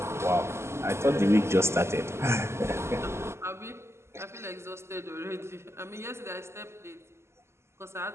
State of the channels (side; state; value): left; late; 0.13 ms